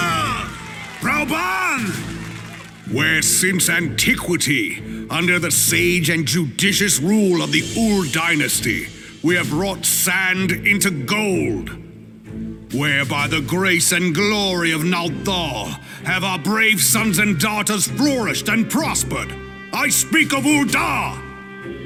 Roban! Where since antiquity, under the sage and judicious rule of the Ur dynasty, we have wrought sand into gold. Where by the grace and glory of Nalthal have our brave sons and daughters flourished and prospered. I speak of Ul'dah!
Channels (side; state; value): both; identical; correlation 1.00